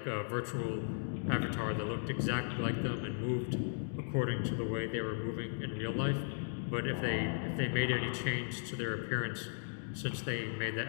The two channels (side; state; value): right; silent; digital silence